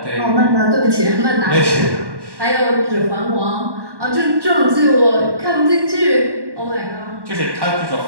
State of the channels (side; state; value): left; late; 1.1 ms